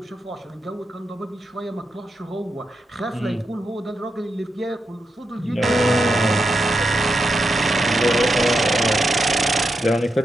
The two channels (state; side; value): normal; both; correlation 0.86